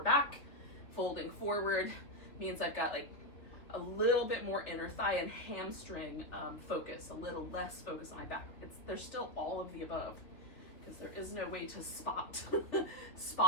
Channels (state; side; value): late; right; 3.1 ms